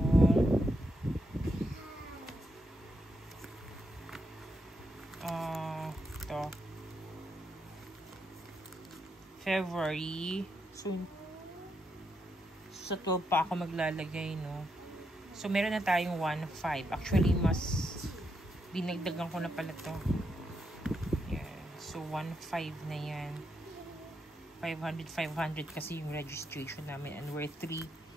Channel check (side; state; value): both; normal; correlation 0.81